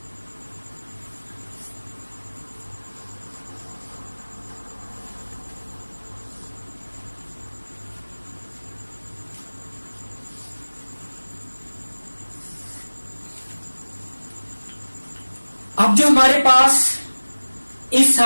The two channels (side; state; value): both; inverted; correlation -1.00